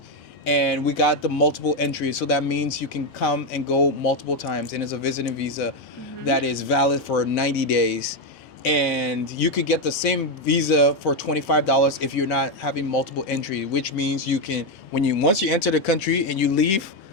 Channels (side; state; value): both; normal; correlation 0.06